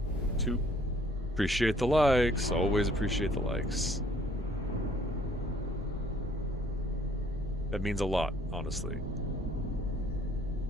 Two. Appreciate the likes. Always appreciate the likes. That means a lot, honestly.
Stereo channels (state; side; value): normal; both; correlation 0.60